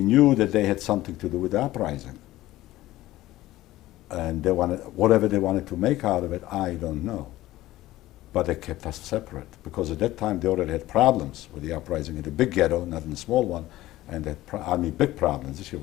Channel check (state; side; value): quieter; right; 16.2 dB